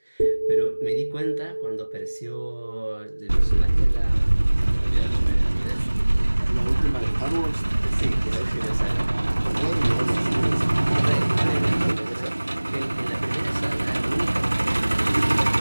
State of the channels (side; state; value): both; inverted; correlation -1.00